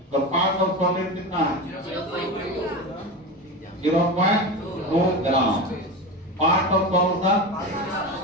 तो पार्ट ऑफ सॉल्वेंट कितना है? 0.2 gram. Part of solution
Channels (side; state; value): both; normal; correlation 0.24